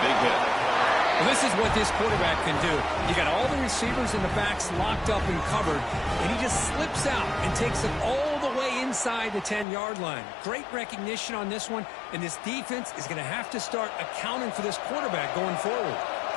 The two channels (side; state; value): right; drops out; at 9.7 s